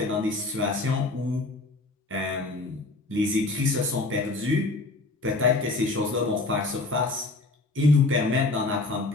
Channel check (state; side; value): quieter; right; 3.3 dB